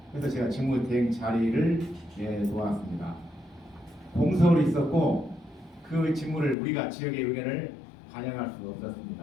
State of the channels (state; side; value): drops out; right; at 6.6 s